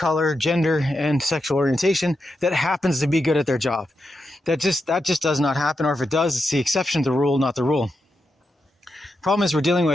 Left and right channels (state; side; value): normal; both; correlation 0.86